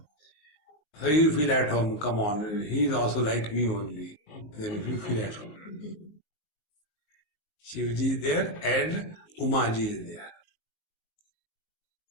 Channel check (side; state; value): right; late; 19 ms